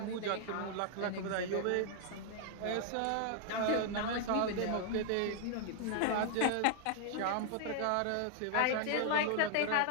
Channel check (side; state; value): both; different; correlation 0.00